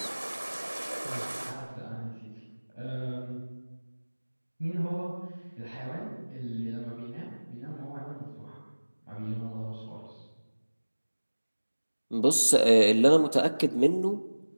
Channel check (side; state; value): both; inverted; correlation -1.00